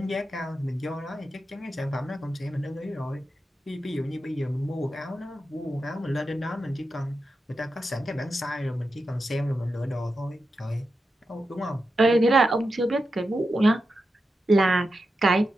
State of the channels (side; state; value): both; normal; correlation 0.89